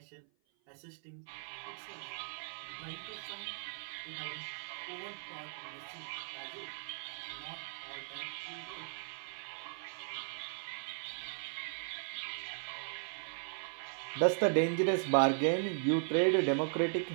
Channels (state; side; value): silent; left; 53 dB below the other